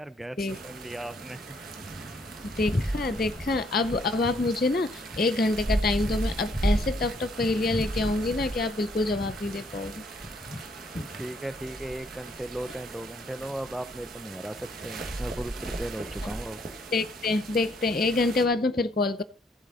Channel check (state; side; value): normal; both; correlation 0.69